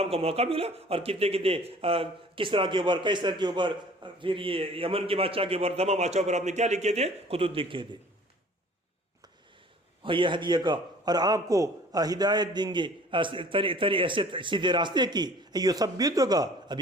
کا موقع ملا. اور کتنے کس طرح کے اوپر، کس طرح کے اوپر، پھر یہ یمن کے بادشاہ کے اوپر، تمام بادشاہوں پر آپ نے کیا لکھے تھے، خطوط لکھے تھے. اور یہ ہدیہ کا، اور آپ کو ہدایت دیں گے ایسے سیدھے راستے کی. یہ سب بھی تو کا، اب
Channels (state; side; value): normal; both; correlation 0.50